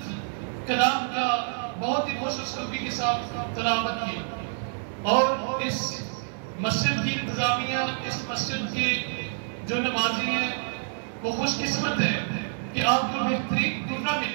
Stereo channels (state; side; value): silent; left; 56 dB below the other